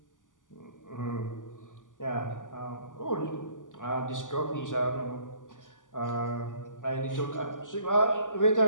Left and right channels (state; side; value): late; right; 0.88 ms